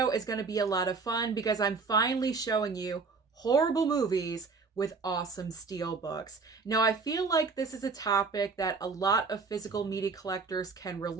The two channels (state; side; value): quieter; left; 4.6 dB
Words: is going to be a lot of fun because I'm finally showing you horrible movies with awesome steelbooks. Now I feel like this is a topic that a lot of physical media collectors can